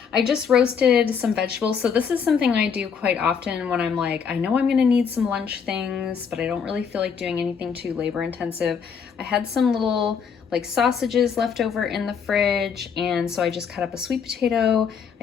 I just roasted some vegetables. So this is something I do quite often when I'm like, I know I'm going to need some lunch things, but I don't really feel like doing anything too labor intensive. I had some little like sausages left over in the fridge, and so I just cut up a sweet potato.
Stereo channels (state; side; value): quieter; right; 6.6 dB